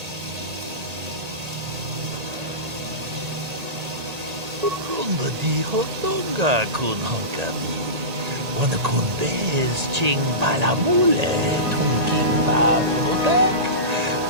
Runda di hotonga kun hankami. Wana kun bez ching palamule. Tongking ba kunotek.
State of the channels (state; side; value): late; left; 1.8 ms